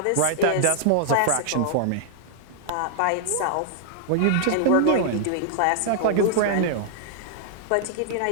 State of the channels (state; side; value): different; both; correlation -0.01